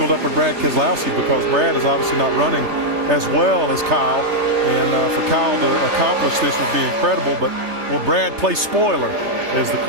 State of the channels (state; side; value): late; left; 3.3 ms